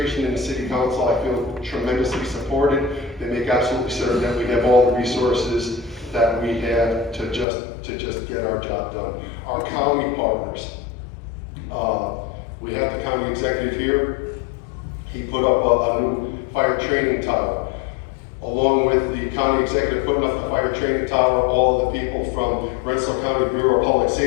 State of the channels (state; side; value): drops out; right; at 7.5 s